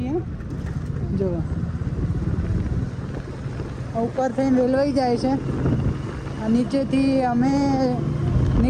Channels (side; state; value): both; identical; correlation 1.00